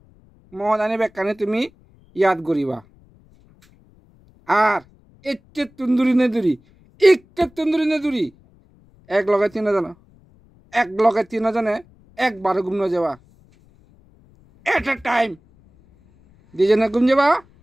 মহাদানে বেগ কানে তুমি ইয়াদ করিবা আর এচ্ছে তন্দুরি নেদুরি একটা তন্দুরি নেদুরি এক লগে তিনজনে একবারে ঘুম যাবা এট এ টাইম দুজনে ঘুম যাবা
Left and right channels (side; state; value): left; noise; rumble, 30 dB below the sound